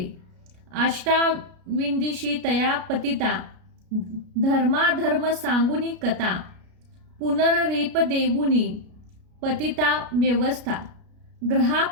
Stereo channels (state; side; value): late; left; 33 ms